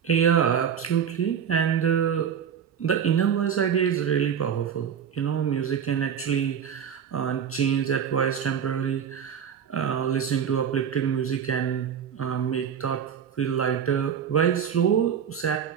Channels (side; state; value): left; quieter; 8.1 dB